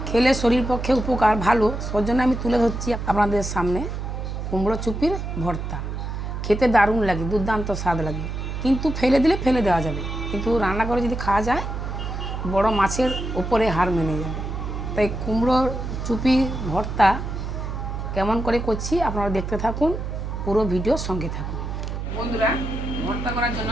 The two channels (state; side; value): noise; right; hum, 5 dB below the sound